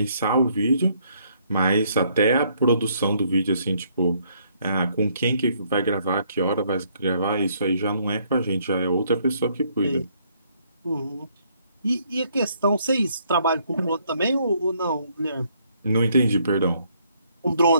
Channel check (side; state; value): both; inverted; correlation -0.68